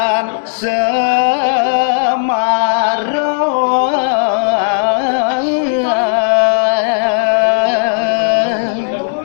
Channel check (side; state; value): right; silent; digital silence